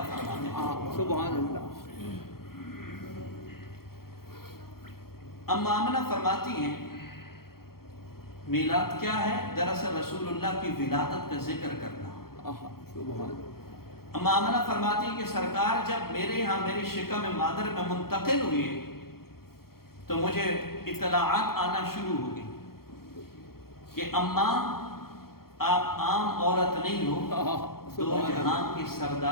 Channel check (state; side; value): late; right; 0.94 ms